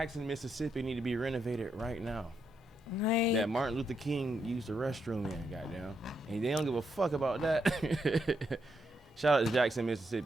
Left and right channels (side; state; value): both; normal; correlation 0.80